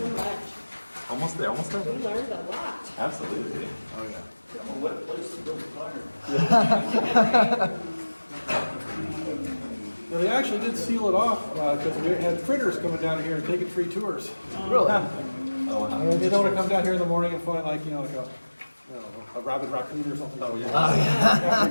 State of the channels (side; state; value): both; inverted; correlation -1.00